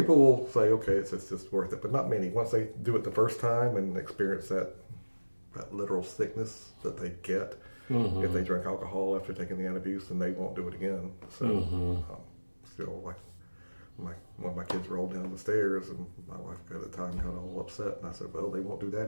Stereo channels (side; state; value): both; inverted; correlation -1.00